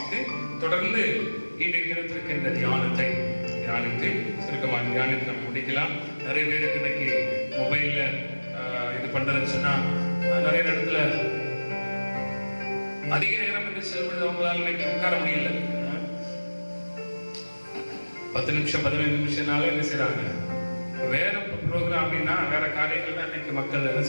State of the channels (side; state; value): both; inverted; correlation -1.00